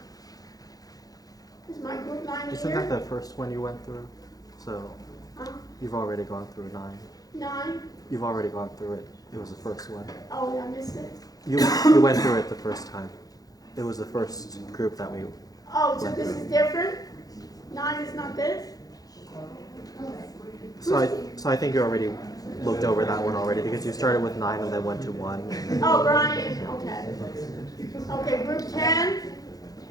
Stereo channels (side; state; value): right; late; 0.18 ms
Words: Is my group 9 Isn't here? that the first one you went through? So Huh? you've already gone through 9. 9? You've already gone through it. It was the first one. Oh, I missed it. You went through it the first time. It was the first group that we. Oh, so this is different? 9 is not this? So I think you already looked over that one already because you started with 9 and then went to 1. Oh, Brian, okay. Okay, group 10?